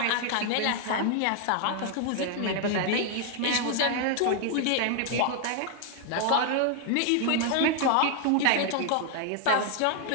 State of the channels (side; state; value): both; different; correlation 0.00